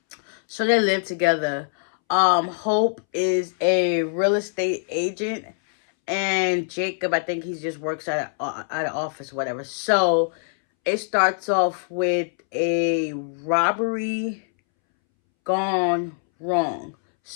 So they live together. Hope is a real estate agent, and Jacob, I think he just works at an office, whatever. So it starts off with a robbery gone wrong.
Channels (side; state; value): right; silent; 63 dB below the other